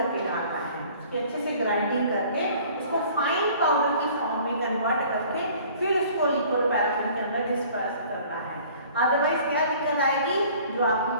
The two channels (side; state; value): both; inverted; correlation -0.51